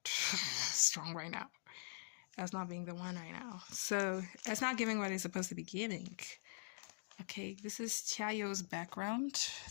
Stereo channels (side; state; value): right; silent; digital silence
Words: strong right now. That's not being the one right now. So, it's not giving what it's supposed to be giving. Okay, this is Xiaoyo's background.